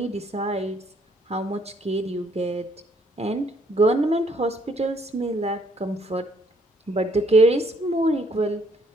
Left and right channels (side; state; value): both; normal; correlation 0.67